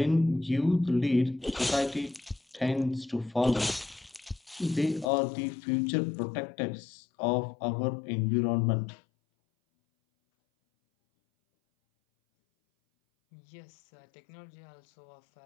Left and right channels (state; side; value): drops out; right; at 5.1 s